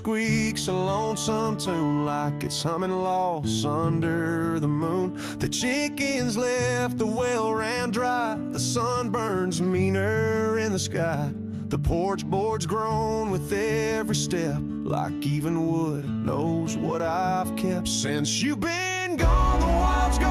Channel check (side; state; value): both; identical; correlation 1.00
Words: a lonesome tune like it's humming lost under the moon. The chickens left, the well ran dry. The sun burns meaner in the sky. The porch boards groan with every step like even wood knows what I've kept. Since you've been gone, the wild's